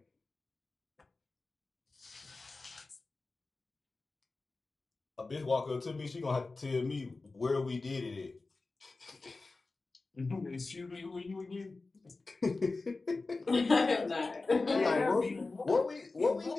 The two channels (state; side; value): quieter; right; 3.6 dB